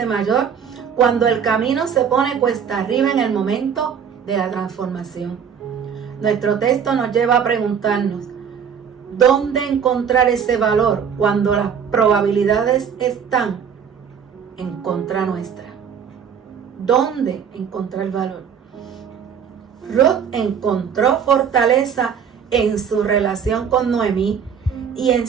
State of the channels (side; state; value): left; quieter; 7.4 dB